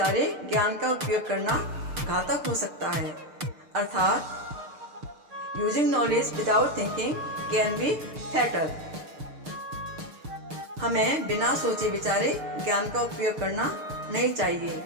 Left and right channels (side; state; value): left; late; 6.6 ms